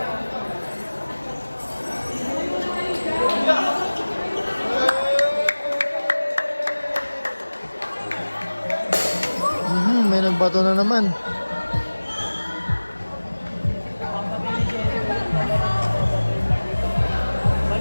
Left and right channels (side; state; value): both; inverted; correlation -1.00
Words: May nagbato na naman.